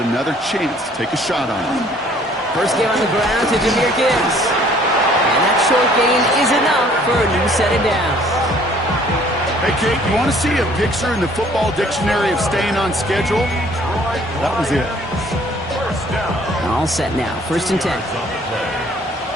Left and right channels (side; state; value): both; normal; correlation 0.58